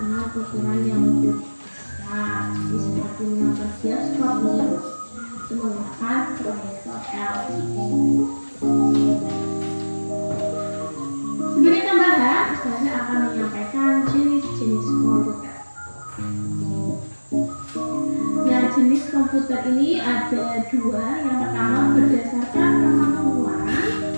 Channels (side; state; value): both; inverted; correlation -1.00